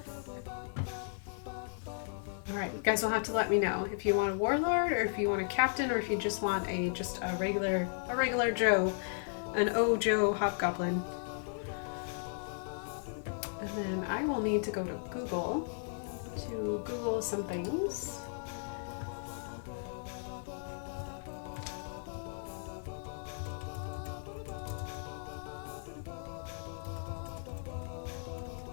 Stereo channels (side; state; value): right; silent; 54 dB below the other